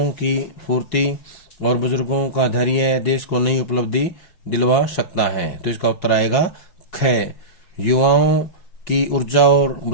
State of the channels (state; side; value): late; right; 5.7 ms